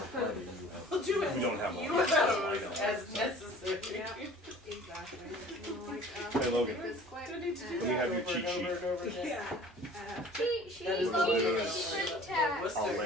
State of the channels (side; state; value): both; normal; correlation 0.47